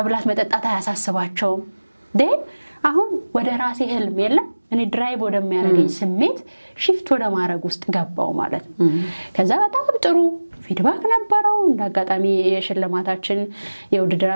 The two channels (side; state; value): both; inverted; correlation -1.00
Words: መጠጣት አያሳስባቸውም። ዴን አሁን ወደ ራሴ ህልም የለም እኔ ድራይቭ ወደሚያደርገኝ ስሜት ሽፍት ወደ ማድረግ ውስጥ ገባው ማለት ነው። ከዛ በጣም ጥሩ ፊድባክ ነበረው። እንዳጋጣሚ የሽልማታችን